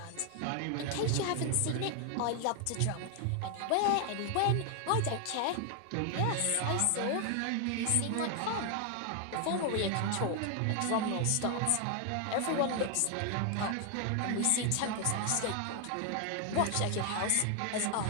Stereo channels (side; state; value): both; different; correlation 0.00